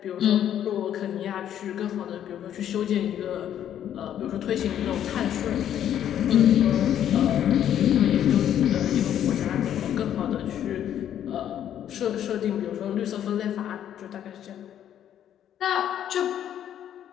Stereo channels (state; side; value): quieter; right; 10.4 dB